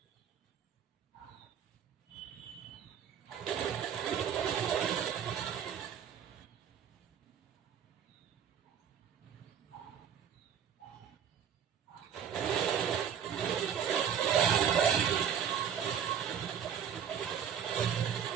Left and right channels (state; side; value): quieter; left; 8.4 dB